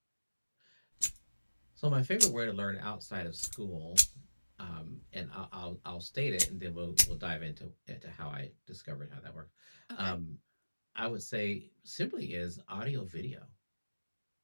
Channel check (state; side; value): inverted; both; correlation -1.00